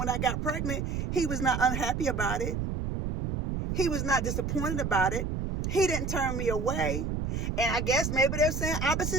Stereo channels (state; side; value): noise; right; rumble, 2 dB below the sound